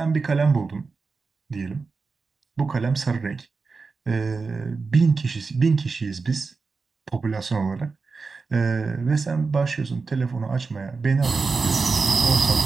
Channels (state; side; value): quieter; left; 4.4 dB